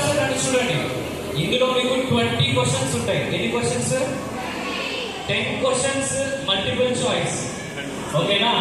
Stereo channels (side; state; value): both; identical; correlation 1.00